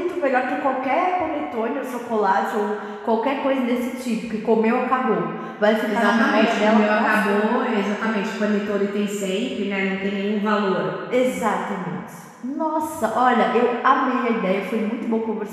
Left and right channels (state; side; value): identical; both; correlation 1.00